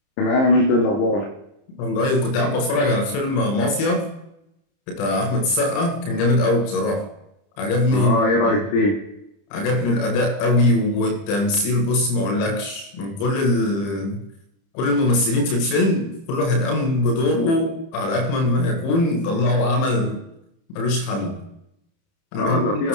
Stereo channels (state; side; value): late; right; 30 ms